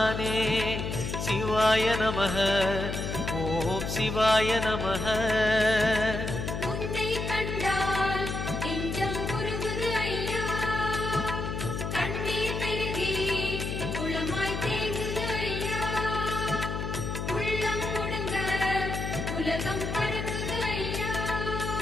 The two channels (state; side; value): noise; left; hum, 3 dB below the sound